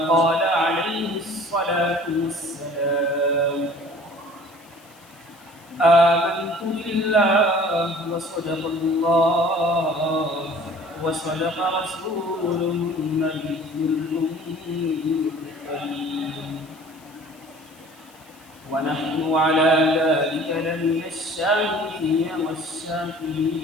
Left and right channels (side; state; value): left; noise; hiss, 27 dB below the sound